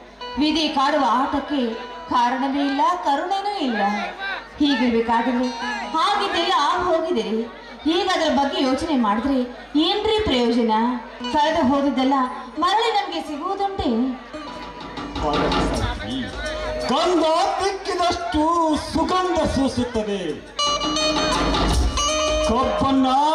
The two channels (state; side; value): identical; both; correlation 1.00